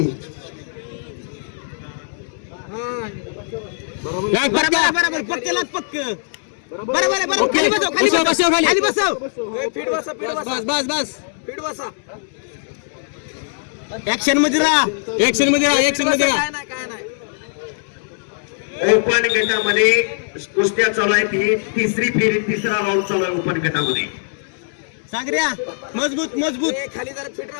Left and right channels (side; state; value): right; silent; digital silence